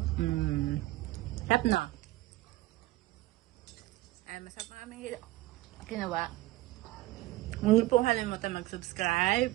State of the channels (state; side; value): quieter; left; 17.8 dB